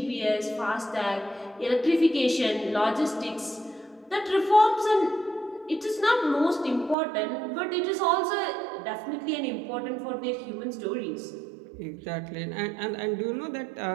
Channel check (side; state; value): left; drops out; at 7.0 s